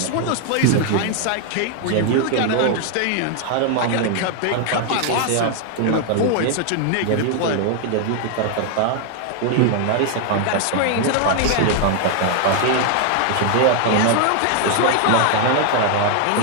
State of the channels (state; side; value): different; both; correlation 0.00